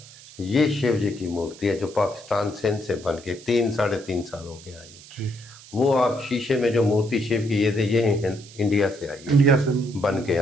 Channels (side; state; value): right; noise; hiss, 20 dB below the sound